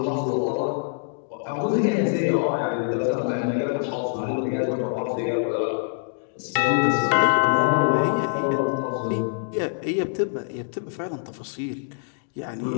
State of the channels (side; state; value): right; silent; digital silence